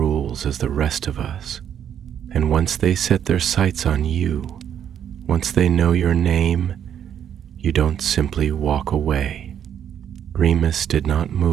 as the rest of us. And once they set their sights on you, once they know your name, you don't simply walk away." Remus did not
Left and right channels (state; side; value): quieter; left; 9.2 dB